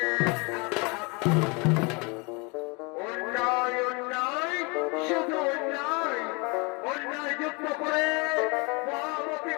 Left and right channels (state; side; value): quieter; right; 29.9 dB